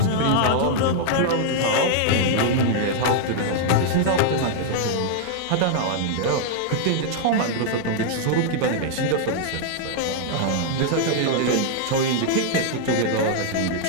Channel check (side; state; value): both; different; correlation -0.01